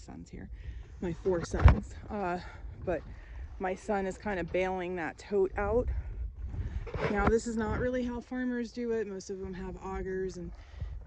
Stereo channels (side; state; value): both; identical; correlation 1.00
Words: here, my 4 sons. But my son is kind of bailing that tote out. Now, this is not really how farmers do it. Most of them have augers and